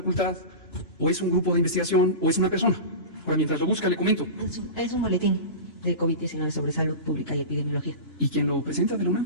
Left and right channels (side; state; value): right; late; 2.9 ms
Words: ¿O es un grupo de investigación? ¿O es una persona? Ahora, mientras lo busca, le comento. Es un boletín de COVID-19 sobre salud pública y epidemiología. ¿Y quién lo presenta de la UNAM?